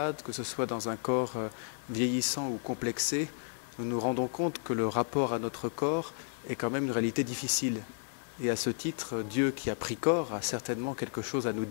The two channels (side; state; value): right; silent; 56 dB below the other